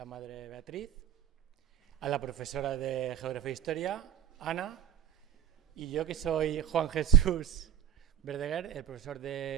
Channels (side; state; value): left; quieter; 9.3 dB